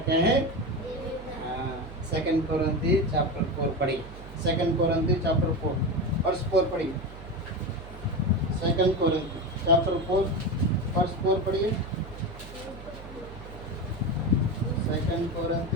है? सेकंड कोरिन्थी चैप्टर 4 पढ़ी, सेकंड कोरिन्थी चैप्टर 4 वर्स 4 पढ़िए। सेकंड कोरिन्थी चैप्टर 4 वर्स 4 पढ़िए। Second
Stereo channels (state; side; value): noise; right; hum, 15 dB below the sound